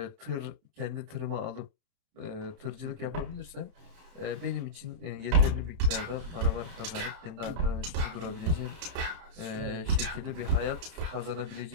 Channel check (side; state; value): left; late; 31 ms